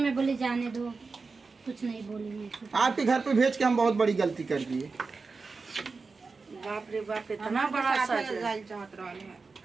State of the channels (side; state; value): left; quieter; 4.3 dB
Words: बोली जाने दो, कुछ नहीं बोली मैं। आपके घर पे भेज के हम बहुत बड़ी गलती कर दिए। बाप रे बाप, इतना बड़ा सच है।